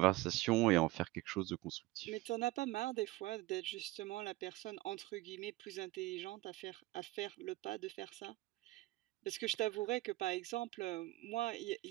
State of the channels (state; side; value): quieter; left; 19.1 dB